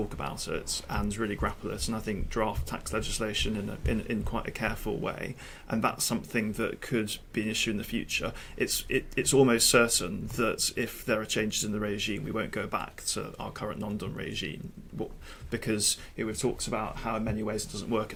about it and really grapple it, and I think draft tax legislation in quite a careful way, and that's something that could be an issue in the future. It's almost certain that if there are changes in the regime, we won't go back to our current non-dom regime, because we've talked about how in many ways it doesn't work, it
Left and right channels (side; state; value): both; identical; correlation 1.00